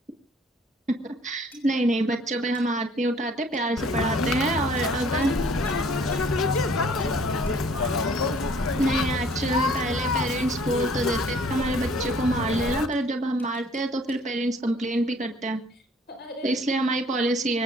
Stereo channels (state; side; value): normal; both; correlation 0.56